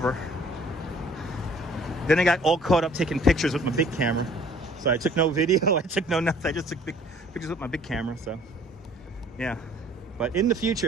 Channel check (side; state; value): both; normal; correlation 0.55